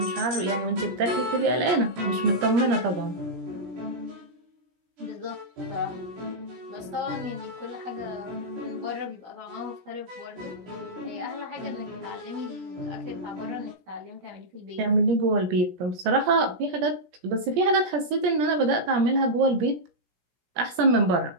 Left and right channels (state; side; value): late; left; 17 ms